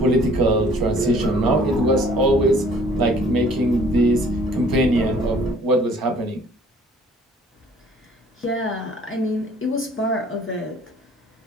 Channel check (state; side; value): normal; both; correlation 0.56